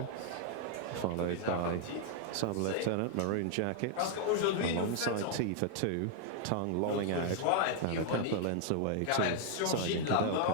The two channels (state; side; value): different; both; correlation 0.00